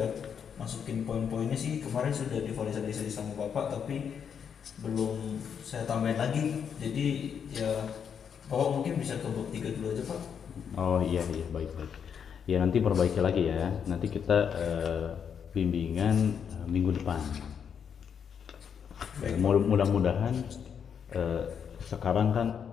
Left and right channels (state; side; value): quieter; right; 7.5 dB